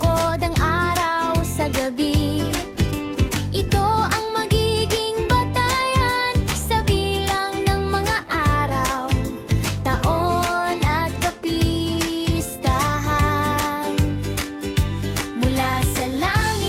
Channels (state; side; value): identical; both; correlation 1.00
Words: ang araw sa gabi. Ito ang magiging batayan sa bilang ng mga araw, taon at kapistahan. Mula sa